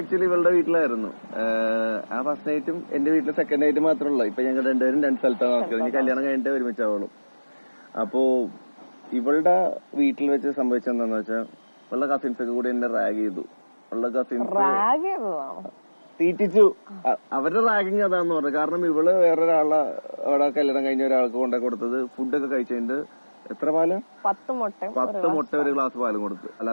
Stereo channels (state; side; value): inverted; both; correlation -1.00